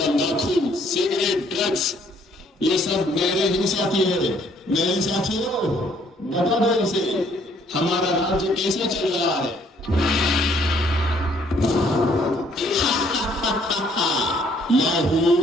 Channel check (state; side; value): normal; both; correlation 0.64